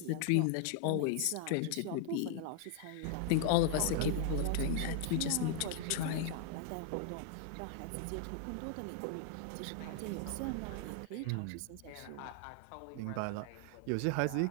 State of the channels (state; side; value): different; both; correlation 0.00